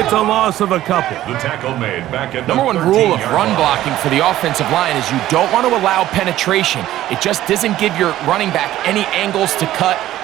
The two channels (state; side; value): quieter; left; 14.0 dB